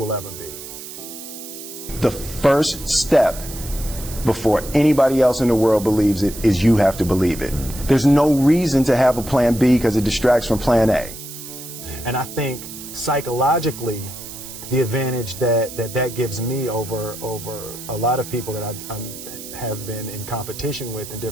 ever be. The first step before anybody else in the world believes it is you have to believe it. There's no reason to have a plan B because it distracts from plan A. And I think psychologically, the advantage that gives me over a lot of people that I have been in competition with in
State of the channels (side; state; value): right; noise; hiss, 12 dB below the sound